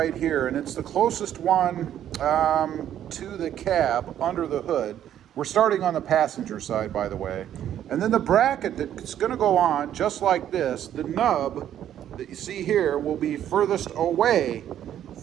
here, and it's the closest one to the cab under the hood. We're starting on the passenger side, by the way. And then the bracket that's going to go on, just like this, the nub that you see here will be furthest away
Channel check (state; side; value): quieter; left; 10.8 dB